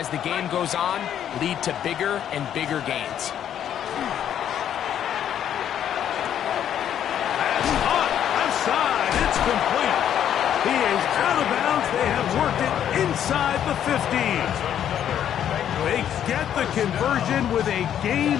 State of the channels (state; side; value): quieter; right; 9.9 dB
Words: the game goes on, lead to bigger and bigger gains. That's hot. Left side. It's complete. He is out of bounds. They have worked it inside the 15. They get the conversion with a gain